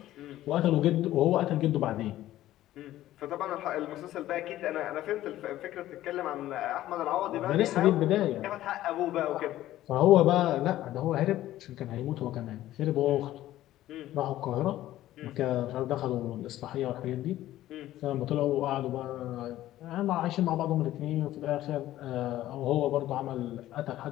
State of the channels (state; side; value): quieter; right; 14.3 dB